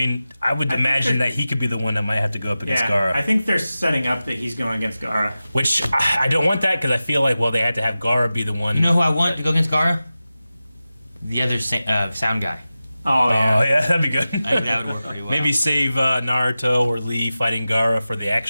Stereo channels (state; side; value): inverted; both; correlation -0.95